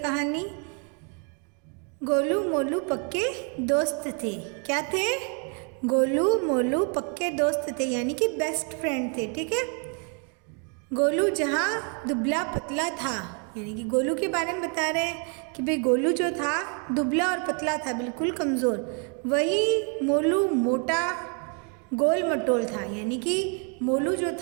गोलू मोलू पक्के दोस्त थे। क्या थे? गोलू मोलू पक्के दोस्त थे, यानी कि बेस्ट फ्रेंड थे। ठीक है, गोलू जहाँ दुबला पतला था, यानी कि गोलू के बारे में बता रहे हैं कि भाई गोलू जो था दुबला और पतला था, बिल्कुल कमज़ोर। वही मोलू मोटा गोल मटोल था, यानी कि मोलू जो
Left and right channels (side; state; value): left; quieter; 38.6 dB